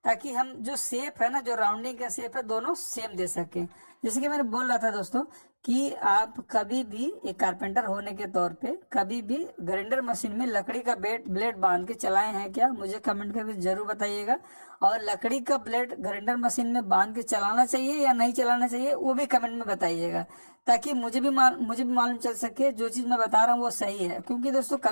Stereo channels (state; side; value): inverted; both; correlation -1.00